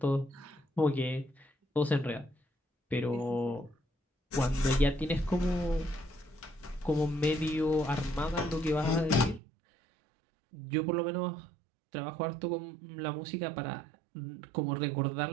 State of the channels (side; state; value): left; drops out; at 9.4 s